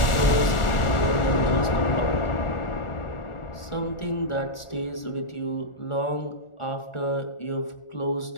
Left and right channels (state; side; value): late; right; 1.4 ms